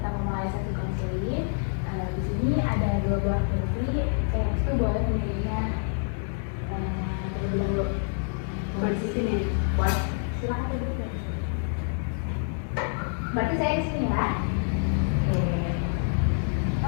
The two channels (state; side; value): silent; right; 60 dB below the other